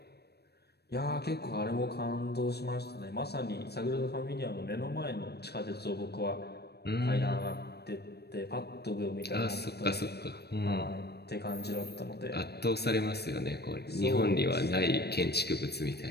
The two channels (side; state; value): right; late; 0.47 ms